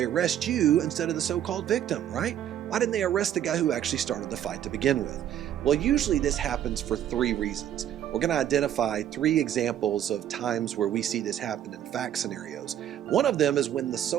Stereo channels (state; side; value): quieter; left; 10.7 dB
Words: arrest you instead of the so-called victim, right? Why didn't they arrest the guy who actually started the fight to begin with? Well, usually this happens for three reasons. We're going to identify three examples of times where we see this happen in fact scenarios. One of them is when the